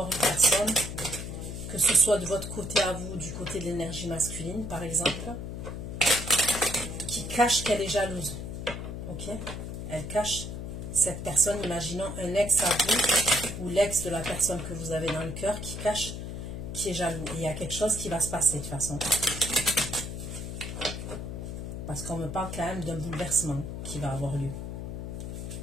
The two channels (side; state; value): left; noise; hum, 6 dB below the sound